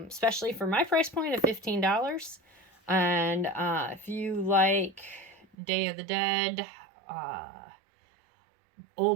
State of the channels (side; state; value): left; drops out; at 5.6 s